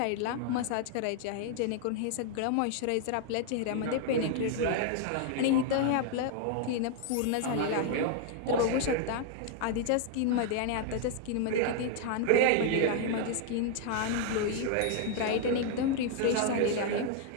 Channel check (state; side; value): different; both; correlation 0.00